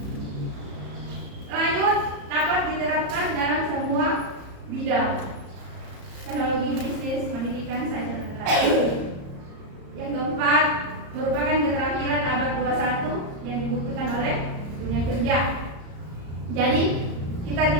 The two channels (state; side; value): late; left; 34 ms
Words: Lanjut, dapat diterapkan dalam semua bidang teknologi, bisnis, pendidikan, sains dan lain. Yang keempat, merupakan keterampilan abad 21 yang dibutuhkan oleh dunia kerja. Jadi kita